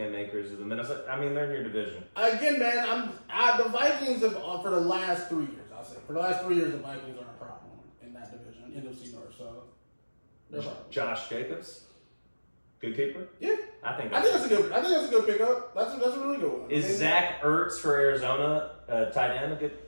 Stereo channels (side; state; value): both; inverted; correlation -1.00